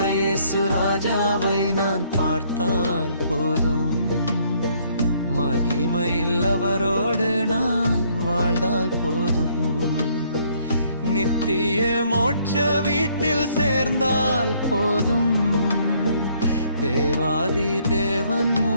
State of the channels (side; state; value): both; inverted; correlation -0.66